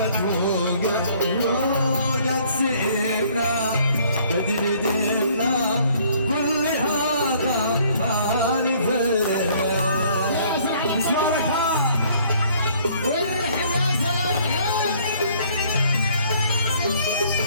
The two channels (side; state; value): both; inverted; correlation -0.60